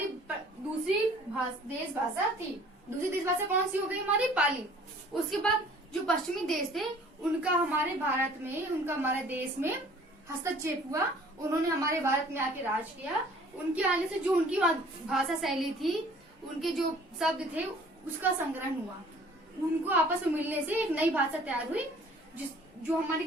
दूसरी देश भाषा थी। दूसरी देश भाषा कौन सी हो गई? हमारी पाली। उसके बाद जो पश्चिमी देश थे उनका हमारे भारत में, उनका हमारे देश में हस्तक्षेप हुआ। उन्होंने हमारे भारत में आके राज किया। उनके आने से जो उनकी भाषा शैली थी, उनके जो शब्द थे, उसका संग्रहण हुआ। उनको आपस में मिलने से एक नई भाषा तैयार हुई, जो हमारी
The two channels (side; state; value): both; normal; correlation 0.53